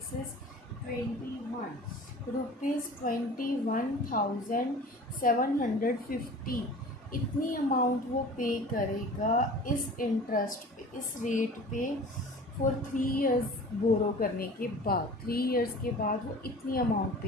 इज़ 21 रुपीज़, 21,750, इतनी अमाउंट वो पे करेगा इस इंटरेस्ट पे, इस रेट पे फॉर 3 इयर्स बोरो करने के बाद, 3 इयर्स के बाद वो इतनी अमाउंट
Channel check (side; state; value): both; normal; correlation 0.41